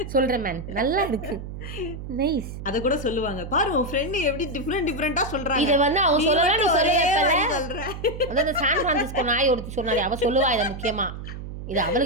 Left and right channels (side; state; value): right; noise; hum, 9 dB below the sound